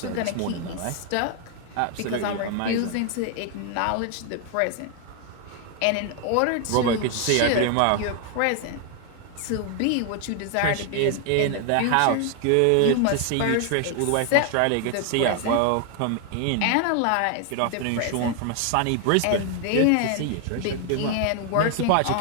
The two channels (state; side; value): different; both; correlation 0.00